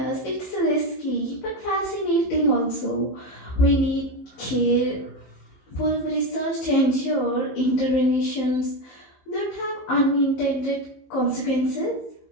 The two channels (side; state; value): right; late; 15 ms